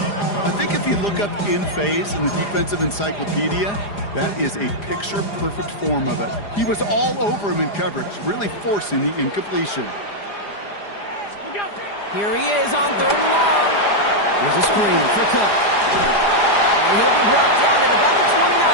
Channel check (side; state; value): right; late; 4.9 ms